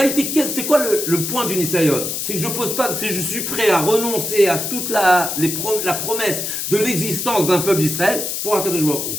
c'est quoi le point du Nisayon? C'est que je suis prêt à renoncer à toute la promesse de l'existence d'un peuple d'Israël pour Akadosh Baruch Hu.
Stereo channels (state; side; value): noise; left; hiss, 3 dB below the sound